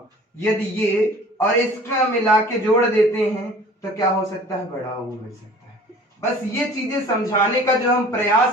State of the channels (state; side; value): normal; both; correlation 0.47